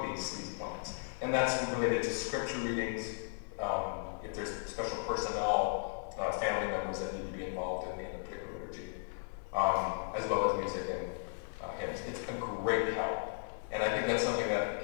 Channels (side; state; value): right; silent; 54 dB below the other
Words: these plans. And that's related to scripture readings, if there's special personnel, family members that need to be involved in a particular liturgy, as well as music and hymns. It's a great help. And I think that's something that